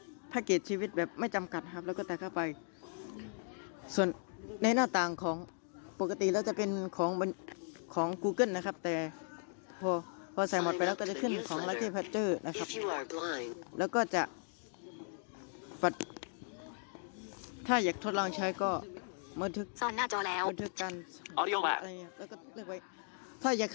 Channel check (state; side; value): silent; right; 53 dB below the other